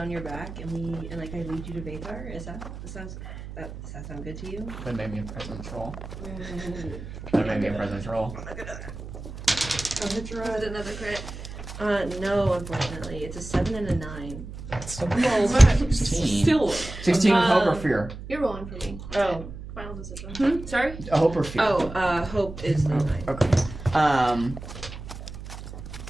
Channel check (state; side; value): noise; right; hum, 11 dB below the sound